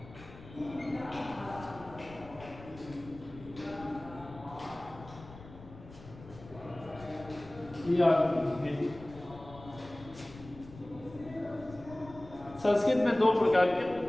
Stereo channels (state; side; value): noise; left; rumble, 17 dB below the sound